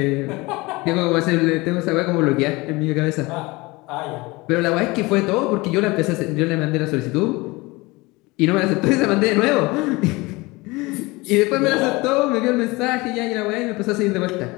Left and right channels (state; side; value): quieter; right; 23.2 dB